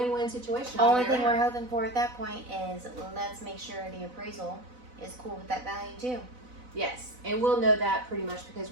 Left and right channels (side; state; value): left; late; 4.0 ms